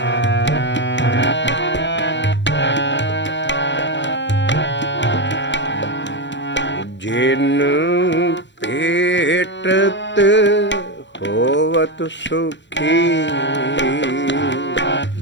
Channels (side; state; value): right; late; 0.53 ms